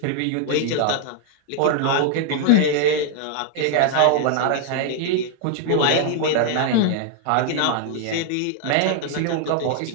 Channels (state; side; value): different; both; correlation 0.00